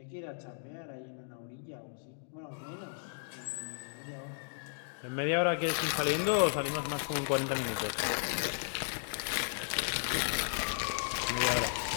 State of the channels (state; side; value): silent; right; digital silence